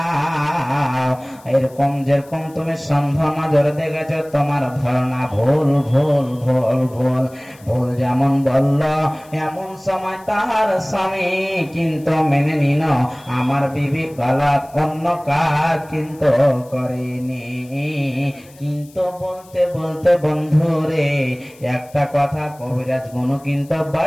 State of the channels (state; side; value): noise; left; hiss, 26 dB below the sound